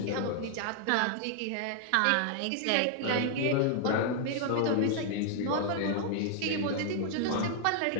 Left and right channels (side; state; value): both; different; correlation 0.00